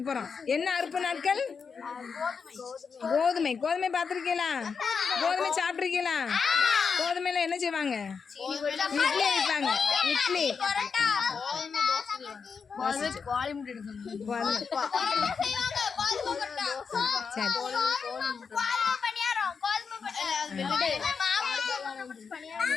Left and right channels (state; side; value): quieter; right; 5.7 dB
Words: போகிறான். என்ன அறுப்பு நாட்கள்? கோதுமை. கோதுமை பார்த்துருக்கீங்களா? கோதுமை சாப்பிட்ருக்கீங்களா? கோதுமையில என்ன செய்வாங்க? இட்லி வைப்பாங்க. இட்லி